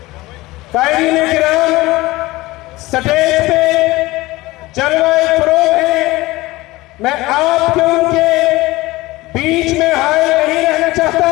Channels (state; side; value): quieter; right; 19.7 dB